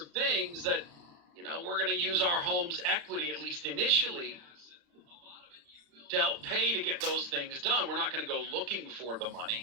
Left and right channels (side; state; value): left; late; 35 ms